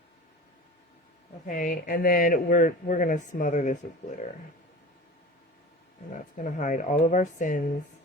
Okay, and then we're going to smother this with glitter. And that's going to hide all of our sins.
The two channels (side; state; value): both; normal; correlation 0.36